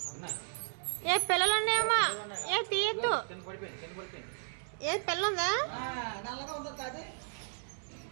ఏ పిల్లలు ఉన్నాయేమో ఏ తీయద్దు ఏ పిల్ల ఉందా నల్లగా ఉందా కాదు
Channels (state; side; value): silent; left; 55 dB below the other